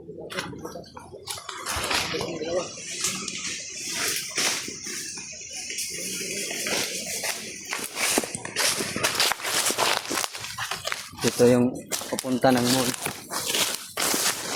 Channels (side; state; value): both; identical; correlation 1.00